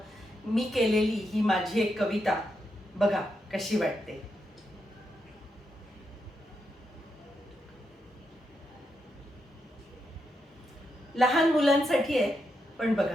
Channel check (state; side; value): normal; both; correlation 0.83